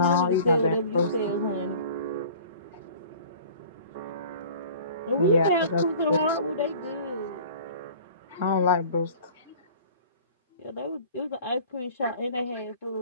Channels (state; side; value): inverted; both; correlation -0.46